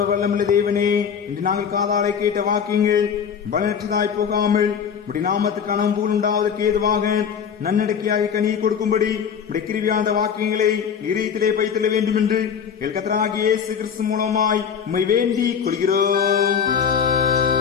வல்லமுள்ள தேவனே, இன்று நாங்கள் காதாலை கேட்ட வாக்கியங்கள் பலனற்றதாய் போகாமல் உடைய நாமத்துக்கு அனம்பூல் உண்டாவதற்கு ஏதுவாக நன்னடக்கையாக கனியை கொடுக்கும்படி உடைய கிருபியாந்த வாக்கியங்களை இதயத்திலே வைத்துள்ள வேண்டும் என்று எங்கள் கர்த்தராகிய இயேசு கிறிஸ்து மூலமாய் உம்மை வேண்டிக் கொள்கிறோம்.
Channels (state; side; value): quieter; right; 7.3 dB